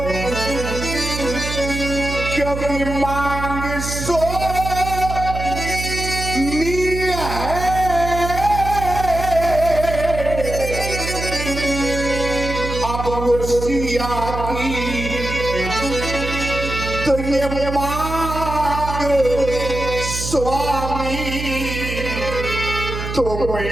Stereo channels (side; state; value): right; noise; hum, 5 dB below the sound